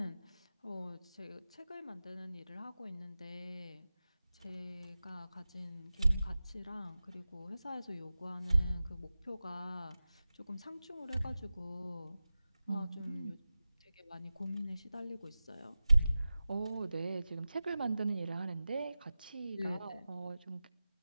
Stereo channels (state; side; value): inverted; both; correlation -0.95